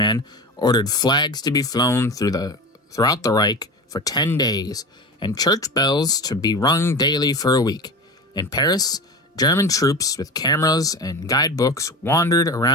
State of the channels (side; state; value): both; normal; correlation 0.29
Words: ordered flags to be flown throughout the Reich for 10 days, and church bells to be rung daily for a week. In Paris, German troops with cameras and guidebooks wandered